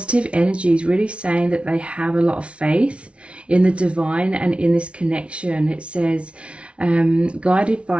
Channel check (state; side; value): late; left; 0.060 ms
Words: energies really saying that they have a lot of faith in the divine and in this connection. It says guided